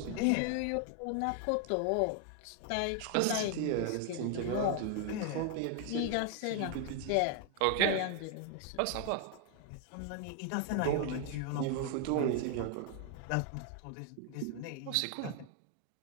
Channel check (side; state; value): both; different; correlation 0.00